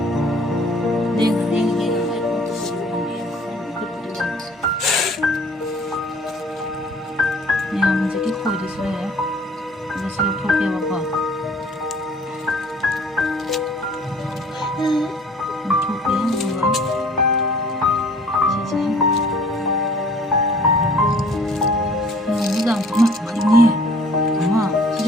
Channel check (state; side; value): normal; both; correlation 0.53